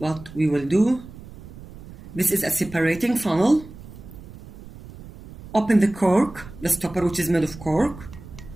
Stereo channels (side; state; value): right; noise; rumble, 16 dB below the sound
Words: will do. This is a separating funnel. Open the cork, the stopper which is made of cork.